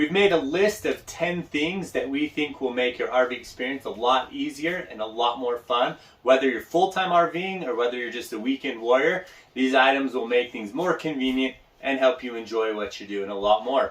made a list of 10 things that we think will make your RV experience a lot easier and a lot more fun. Whether you're full-time RVing or whether you're just a weekend warrior, these items will make things more convenient and help you enjoy what you're doing a lot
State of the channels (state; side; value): identical; both; correlation 1.00